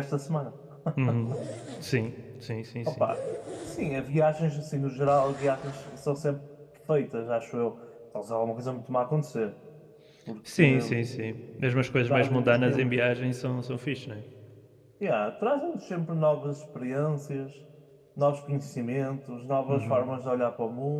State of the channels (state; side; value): identical; both; correlation 1.00